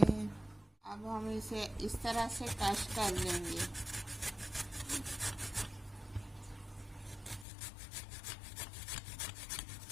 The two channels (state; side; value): drops out; right; at 7.5 s